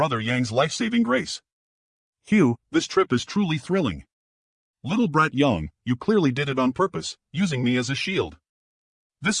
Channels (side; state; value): both; identical; correlation 1.00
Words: Yang's life-saving grace. Hugh, this trip is truly thrilling. Little brat Yang, you clearly did it on purpose, using me as a shield.